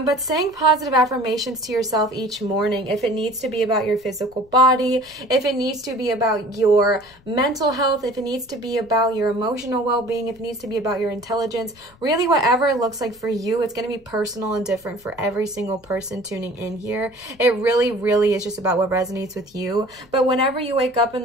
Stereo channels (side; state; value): left; noise; rumble, 29 dB below the sound